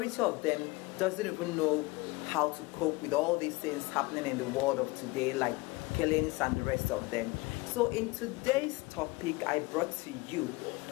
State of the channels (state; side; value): quieter; right; 22.8 dB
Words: of them doesn't even know how to cope with all these things happening in the world of today, like killings and the rest of them. So in today's topic, I brought to you